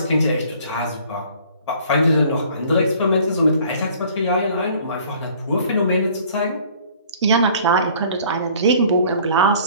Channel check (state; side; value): inverted; both; correlation -0.54